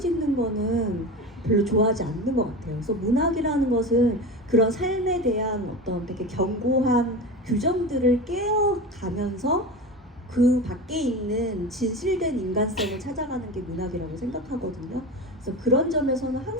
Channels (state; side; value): normal; both; correlation 0.28